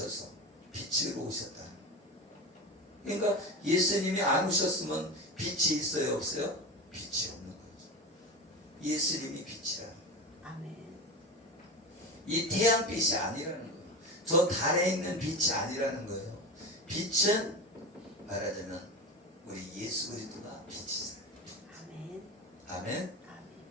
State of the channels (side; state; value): both; normal; correlation 0.25